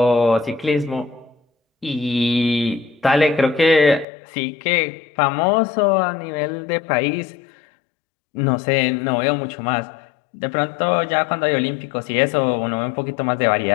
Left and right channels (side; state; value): right; drops out; at 4.0 s